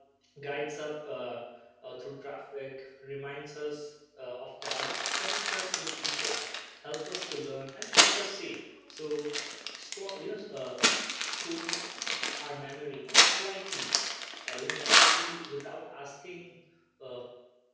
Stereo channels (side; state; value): both; identical; correlation 1.00